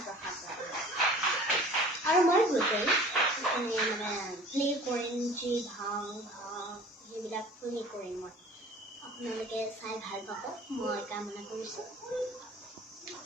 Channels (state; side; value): normal; both; correlation 0.46